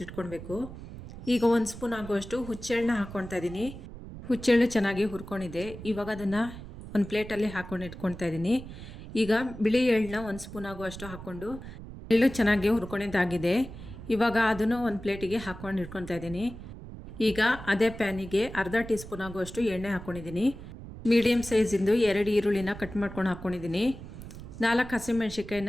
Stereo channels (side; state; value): right; noise; rumble, 13 dB below the sound